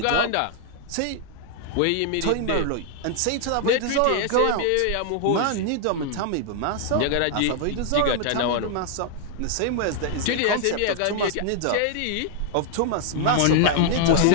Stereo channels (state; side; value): different; both; correlation 0.00